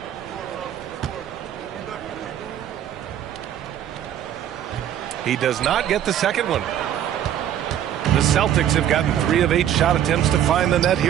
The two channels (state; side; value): quieter; left; 10.6 dB